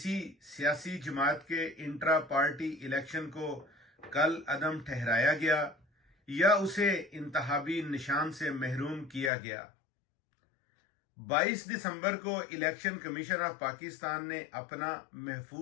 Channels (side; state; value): right; drops out; at 9.3 s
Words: सियासी जमात के इंट्रा पार्टी इलेक्शन को कल अदम ठहराया गया या उसे इंतहाबी निशान से महरूम किया गया? 22 दिसंबर को इलेक्शन कमीशन ऑफ पाकिस्तान ने अपना